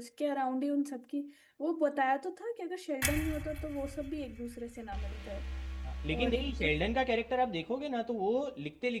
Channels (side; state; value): both; identical; correlation 1.00